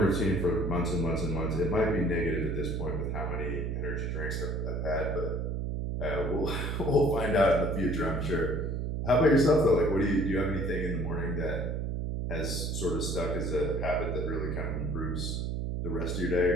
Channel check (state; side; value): noise; right; hum, 1 dB below the sound